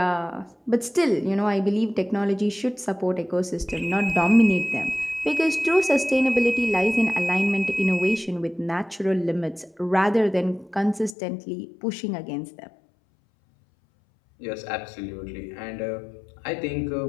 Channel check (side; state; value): right; drops out; at 11.2 s